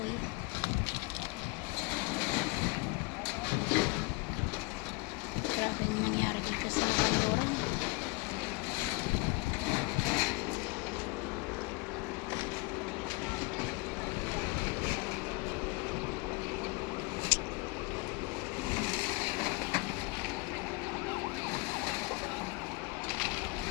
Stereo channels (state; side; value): quieter; right; 26.7 dB